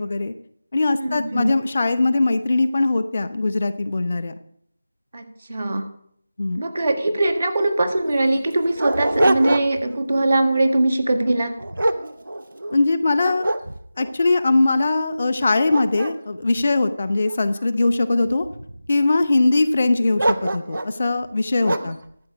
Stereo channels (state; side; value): inverted; both; correlation -0.94